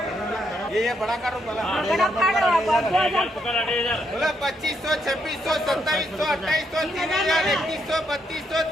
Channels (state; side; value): normal; both; correlation 0.77